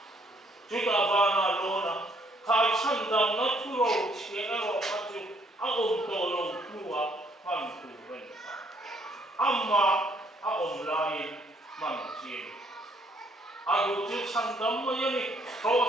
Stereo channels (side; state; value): both; normal; correlation 0.67